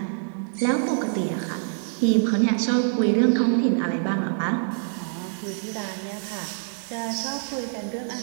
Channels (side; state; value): left; silent; digital silence